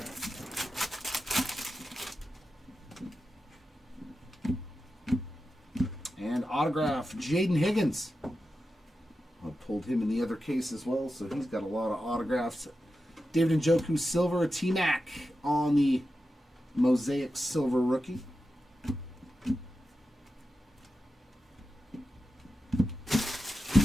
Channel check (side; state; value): both; normal; correlation 0.91